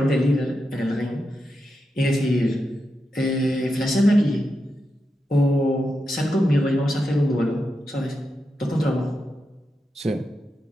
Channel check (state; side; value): normal; both; correlation 0.87